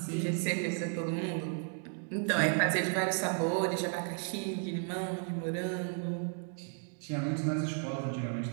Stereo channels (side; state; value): left; silent; 55 dB below the other